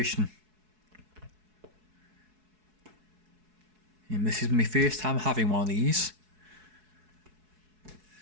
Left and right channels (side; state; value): left; late; 4.7 ms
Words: And this is my first time having one of these.